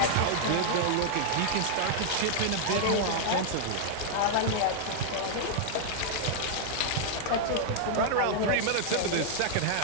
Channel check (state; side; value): different; both; correlation -0.01